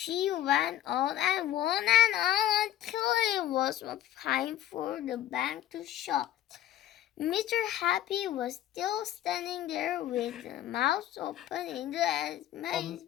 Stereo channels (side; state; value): right; quieter; 12.4 dB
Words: went on and on until it was time for the bank to shut. Mr. Happy was still standing there with his mouth open in